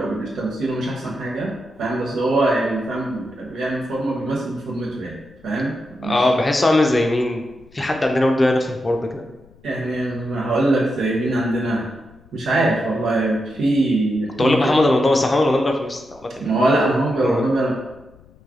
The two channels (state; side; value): noise; left; rumble, 26 dB below the sound